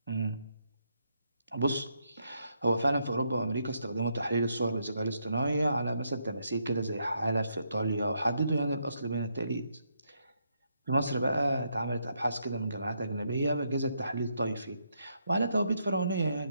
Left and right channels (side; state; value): both; inverted; correlation -0.77